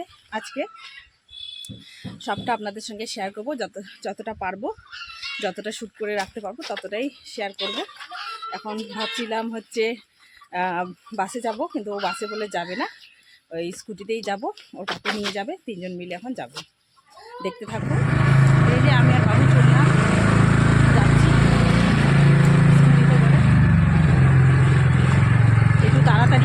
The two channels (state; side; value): identical; both; correlation 1.00